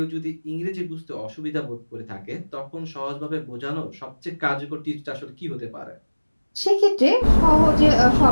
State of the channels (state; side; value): inverted; both; correlation -1.00